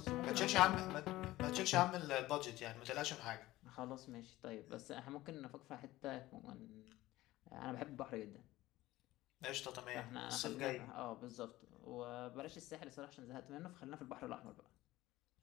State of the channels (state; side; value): quieter; right; 17.0 dB